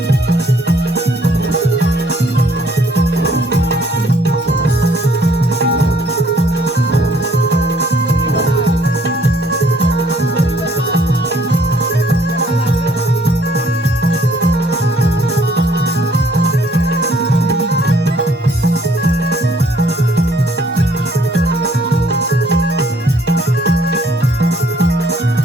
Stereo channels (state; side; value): normal; both; correlation 0.63